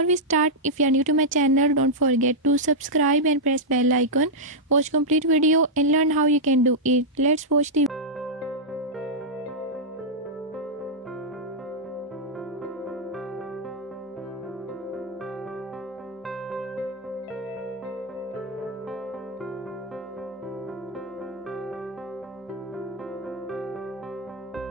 we start, if you are new to my channel, don't forget to subscribe and press bell icon. Watch complete video and learn how you can do it. Let's watch the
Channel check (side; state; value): both; normal; correlation -0.06